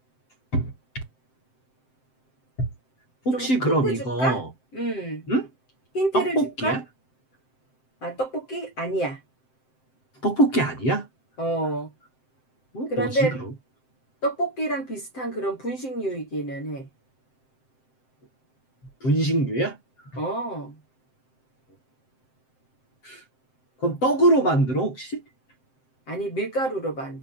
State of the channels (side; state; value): right; late; 7.7 ms